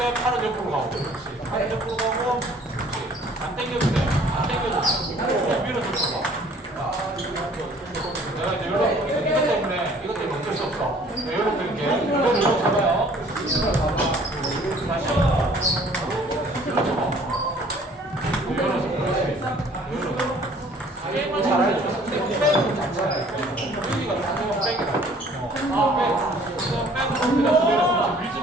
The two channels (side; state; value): both; normal; correlation 0.55